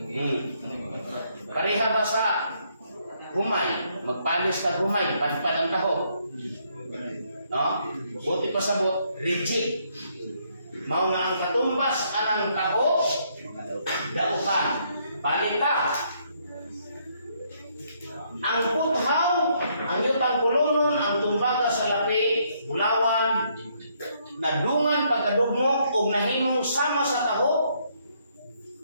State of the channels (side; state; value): both; inverted; correlation -0.71